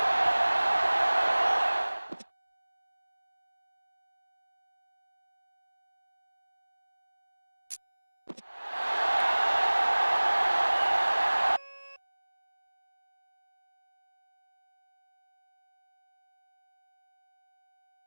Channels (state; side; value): inverted; both; correlation -1.00